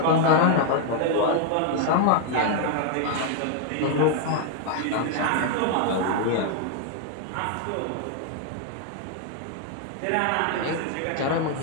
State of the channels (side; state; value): both; different; correlation 0.00